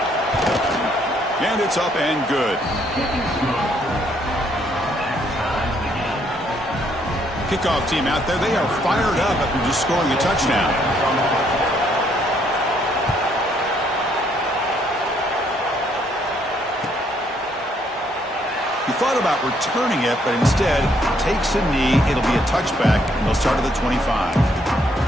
And it's up and good. Kickoff team out there, they are fired up after just scoring a touchdown. He thought about returning it, but instead takes a knee. It'll be a touchback, and they'll start at the 25.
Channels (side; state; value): both; normal; correlation 0.69